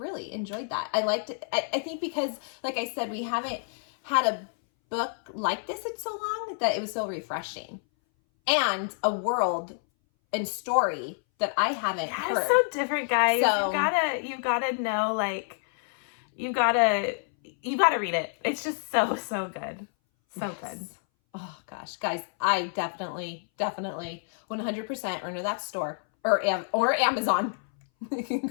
enjoyed that. I liked it. I think because, like I said, we haven't had a book like this in so long that it was so refreshing. And a world and story that I haven't heard. It's so different, guys. So, you gotta know, like, you gotta read it. It's just so good. So good. Oh gosh, guys, I definitely 100% run to that store or Amazon. You can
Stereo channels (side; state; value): right; silent; 59 dB below the other